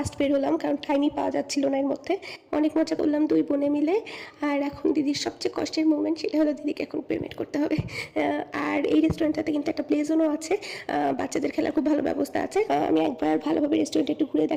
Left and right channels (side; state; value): both; identical; correlation 1.00